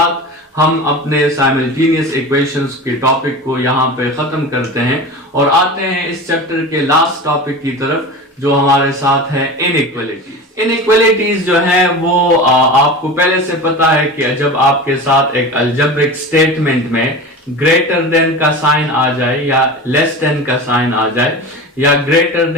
हम अपने साइमल्टेनियस इक्वेशंस के टॉपिक को यहां पे खत्म करते हैं और आते हैं इस चैप्टर के लास्ट टॉपिक की तरफ, जो हमारे साथ है इनइक्वालिटीज। इनइक्वालिटीज जो है वो आपको पहले से पता है कि जब आपके साथ एक अलजेब्रिक स्टेटमेंट में ग्रेटर देन का साइन आ जाए या लेस देन का साइन आ जाए या ग्रेटर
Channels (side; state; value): both; normal; correlation 0.31